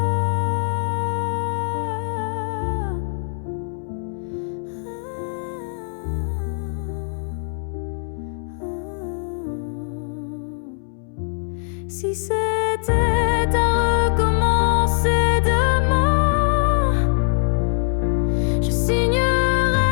Si c'était à recommencer demain, je signerais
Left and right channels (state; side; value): silent; right; 63 dB below the other